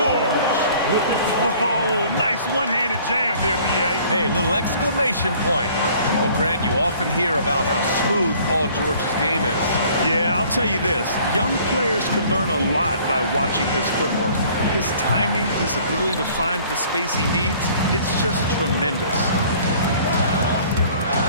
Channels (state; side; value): inverted; both; correlation -0.54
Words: Oh, nice one-handed jam there, B.A. Hey, little exclamation point. Well, Grant, you often hear about how smooth Paul George's game is. Yeah, I'll tell you this. Young players can learn a lot by watching his footwork. His timing, his ability to find the space he needs, it's just tremendous.